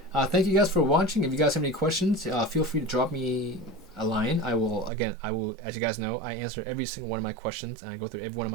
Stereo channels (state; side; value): drops out; left; at 4.9 s